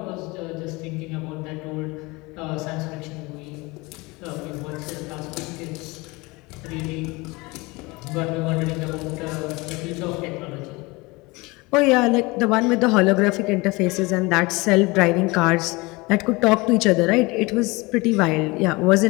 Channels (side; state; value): right; quieter; 24.1 dB